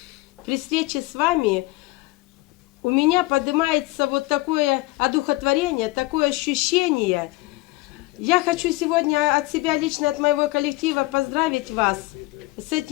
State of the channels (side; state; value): right; quieter; 21.0 dB